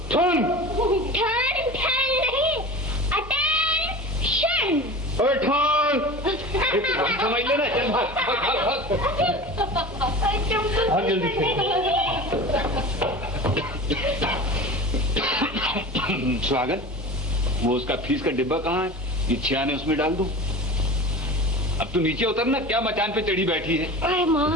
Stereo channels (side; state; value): both; normal; correlation 0.34